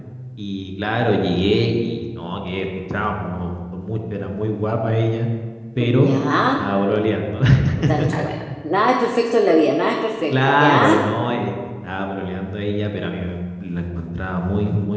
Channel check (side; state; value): both; identical; correlation 1.00